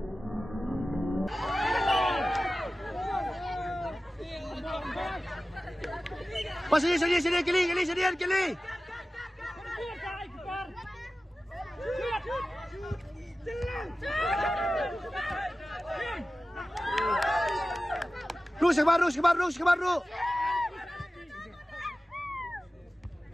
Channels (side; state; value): both; normal; correlation 0.95